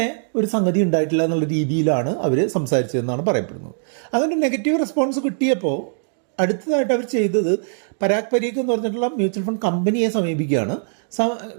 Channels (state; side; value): silent; left; digital silence